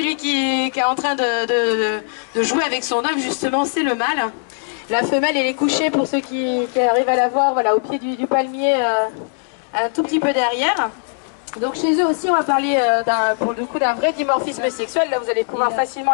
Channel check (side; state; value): right; silent; 66 dB below the other